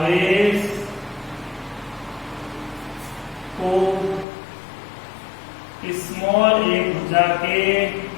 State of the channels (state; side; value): drops out; right; at 4.2 s